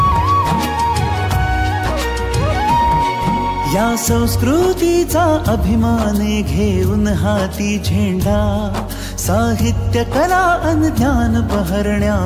या संस्कृतीचा अभिमान घेऊन हाती झेंडा. साहित्य कला अन ज्ञान बहरण्या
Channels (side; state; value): both; identical; correlation 1.00